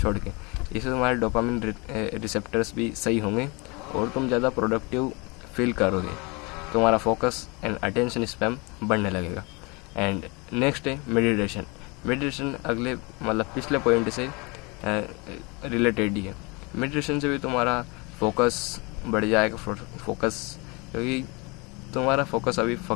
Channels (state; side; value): quieter; right; 27.9 dB